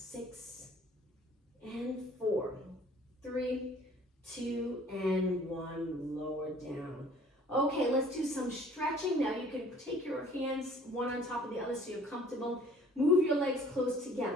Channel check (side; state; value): both; normal; correlation 0.53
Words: and 4, 3, 2, and 1, lower down. Okay, let's do some stretching. Now you can take your hands one on top of the other so you're comfortable. Move your legs close